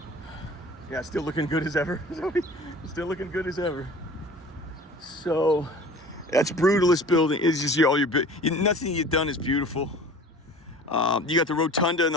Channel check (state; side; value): normal; both; correlation 0.43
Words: Yeah, still looking good as ever. Still looking good as ever. So that's brutalist building. It's just all your nothing you've done is beautiful. You got the rotunda and